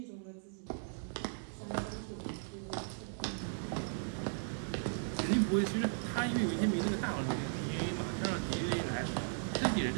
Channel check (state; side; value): silent; left; digital silence